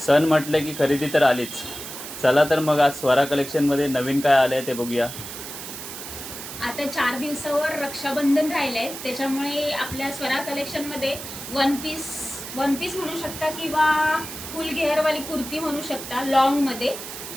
म्हटलं की खरेदी तर आलीच. चला तर मग आज स्वरा कलेक्शनमध्ये नवीन काय आलं आहे ते बघूया. आता 4 दिवसावर रक्षाबंधन राहिलंय, त्याच्यामुळे आपल्या स्वरा कलेक्शनमध्ये वन पीस म्हणू शकता किंवा फुल घेअरवाली कुर्ती म्हणू शकता लॉंगमध्ये.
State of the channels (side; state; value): right; noise; hiss, 10 dB below the sound